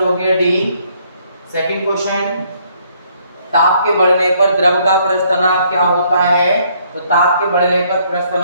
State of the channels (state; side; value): inverted; both; correlation -0.67